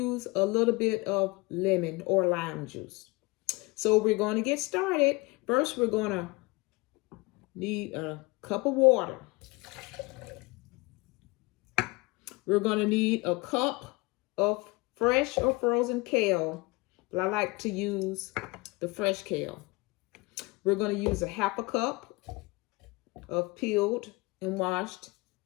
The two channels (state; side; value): quieter; right; 24.7 dB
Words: a little bit of lemon or lime juice. So we're going to get started. First, we're going to need a cup of water. We're going to need a cup of fresh or frozen kale, but I like to use the fresh kale. We're going to use a half a cup of peeled and washed